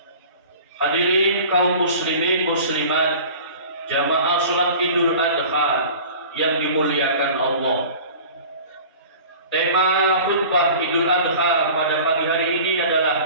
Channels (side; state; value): both; inverted; correlation -0.42